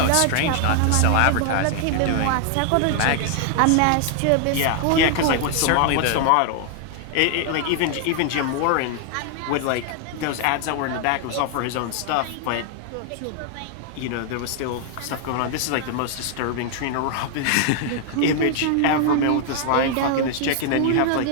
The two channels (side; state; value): both; different; correlation 0.00